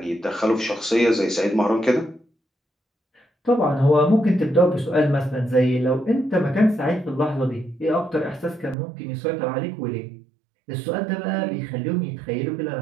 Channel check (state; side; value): drops out; left; at 8.8 s